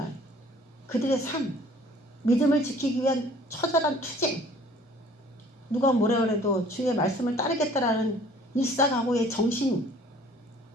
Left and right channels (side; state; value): both; normal; correlation 0.53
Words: 그들의 삶. 믿음을 지키기 위한 처절한 투쟁. 누가 뭐라 그래도 주의 말씀을 따르겠다라는 일사각오의 정신.